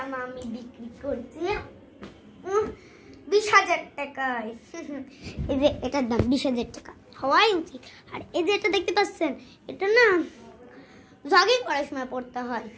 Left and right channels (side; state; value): both; identical; correlation 1.00